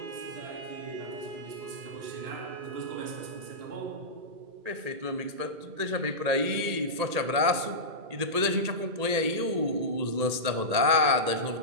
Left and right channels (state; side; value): late; left; 1.8 ms